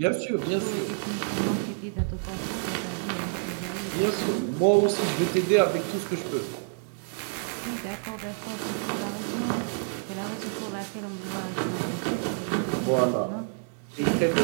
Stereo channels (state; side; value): silent; left; digital silence